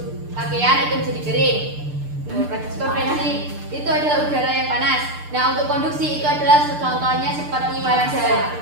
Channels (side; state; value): left; late; 6.7 ms